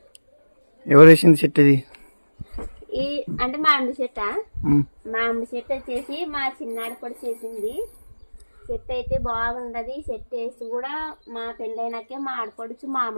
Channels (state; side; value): inverted; both; correlation -1.00